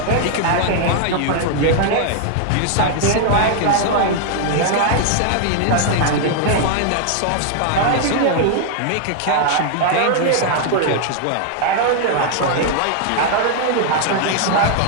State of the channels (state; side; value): different; both; correlation 0.00